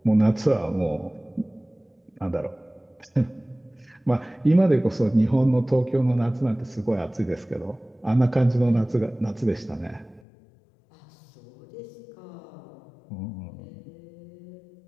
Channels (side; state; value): right; drops out; at 10.2 s